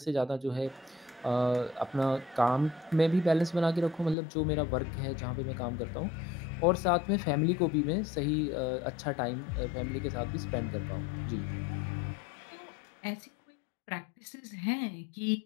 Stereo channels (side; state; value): right; drops out; at 4.2 s